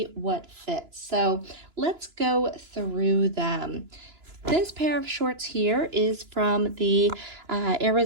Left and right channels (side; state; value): left; late; 2.9 ms